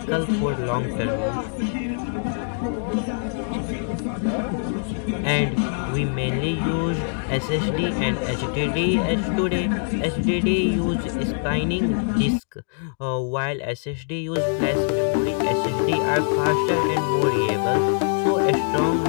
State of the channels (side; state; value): right; silent; digital silence